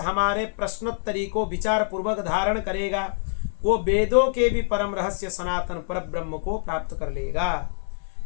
प्रश्नोत्तरी को विचार पूर्वक धारण करेगा वो वेदों के भी परम रहस्य सनातन परब्रह्म को प्राप्त कर लेगा।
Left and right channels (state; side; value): silent; right; 61 dB below the other